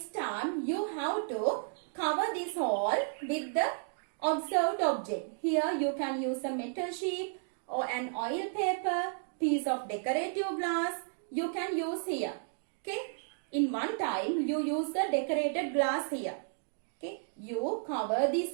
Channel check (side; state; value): left; silent; digital silence